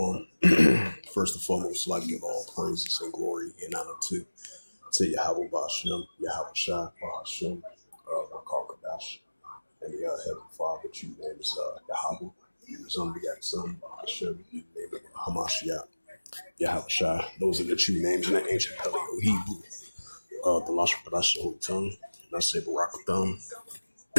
First and foremost, I'd like to give all praises and glory and honor to Yahweh Bashem, Yahweh Shai, Bahashem, Rakar Kadash, and the Heavenly Father, which you name is Yahweh, his unbegotten Son, Bahashem, you name it Hamashiach, Yahweh Shai. Those are the true names in the ancient Paleo Hebrew, the Lashon Kadash, the Holy Tongue, and I say Barakatham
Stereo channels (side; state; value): both; inverted; correlation -1.00